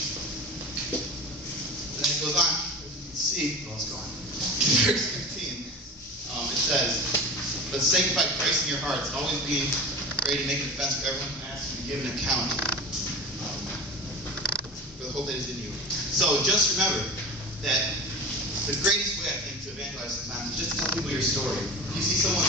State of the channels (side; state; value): both; normal; correlation 0.31